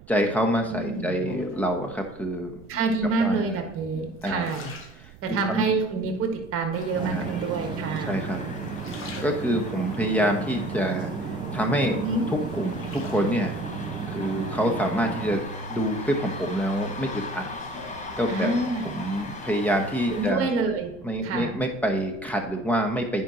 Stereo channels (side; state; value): right; noise; rumble, 22 dB below the sound